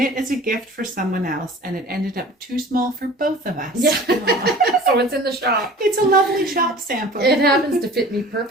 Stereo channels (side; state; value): both; normal; correlation 0.43